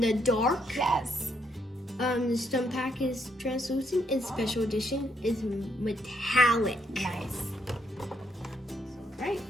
dark. Yes. The stunt pack is translucent, and special edition is metallic. Nice. Right,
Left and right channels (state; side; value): normal; both; correlation 0.75